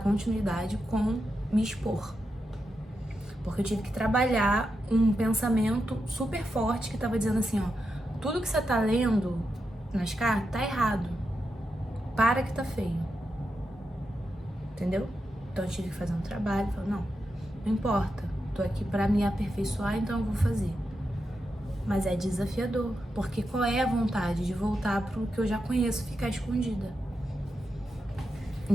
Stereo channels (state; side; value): normal; both; correlation 0.87